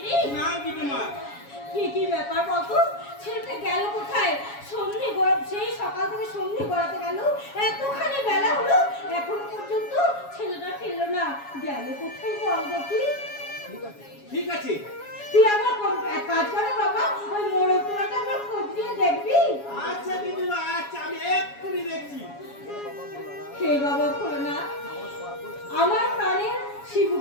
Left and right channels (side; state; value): right; late; 7.2 ms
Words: না গিন্নিমা। কি ব্যাপার বলতো? ছেলেটা গেল কোথায়? সেই সকাল থেকে সন্ধে গড়াতে গেল, এতখানি বেলা হলো, এখনো পর্যন্ত ছেলেটা ফিরলো না। গেল কোথায় বল দেখি? ঠিক আছে, তুই আমার এক কাজ কর না বাবা, ওই মোড়কটাকে আমার খোঁজ নিয়ে দেখবি। আচ্ছা গিন্নিমা, আচ্ছা আমি এক্ষুনি দেখছি। হে বাবা না, আমার প্রাণের